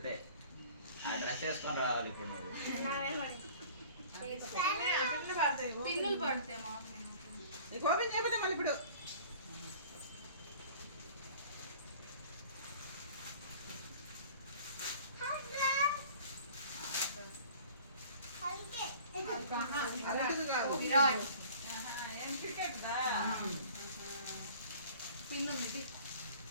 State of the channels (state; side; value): inverted; both; correlation -0.47